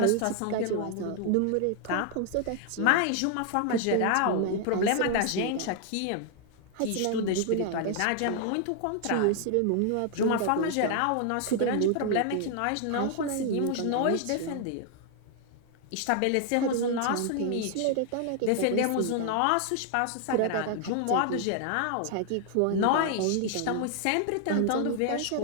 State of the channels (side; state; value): both; different; correlation 0.00